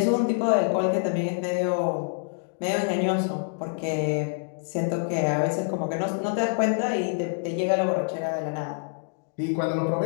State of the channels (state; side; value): silent; right; digital silence